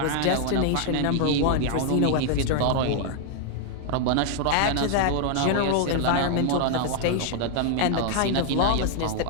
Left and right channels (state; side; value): different; both; correlation 0.00